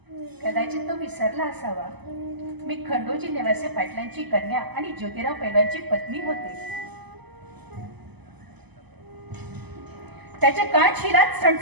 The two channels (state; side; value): late; left; 0.99 ms